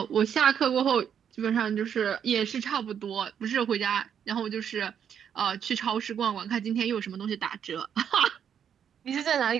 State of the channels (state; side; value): quieter; left; 8.3 dB